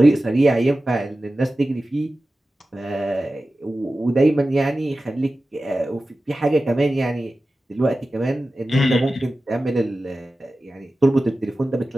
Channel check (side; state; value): both; normal; correlation 0.95